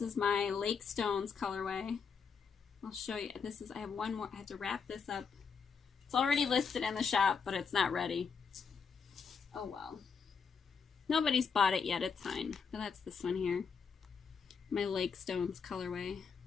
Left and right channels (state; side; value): quieter; right; 6.0 dB